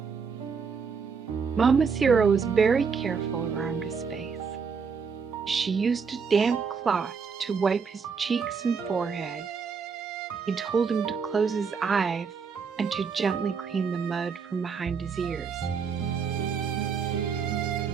Mama Sierra was very careful around his face. She used a damp cloth to wipe his cheeks and forehead. He told him to close his eyes and to gently clean the mud from behind his ears.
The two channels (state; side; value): quieter; left; 5.8 dB